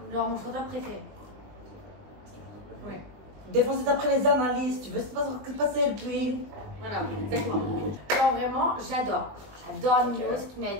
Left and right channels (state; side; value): late; left; 20 ms